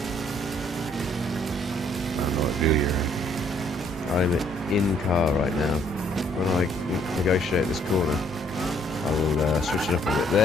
don't know what view you're in. I'm in car right now. When I negotiate this corner, I will switch it up a bit.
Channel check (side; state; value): both; normal; correlation 0.65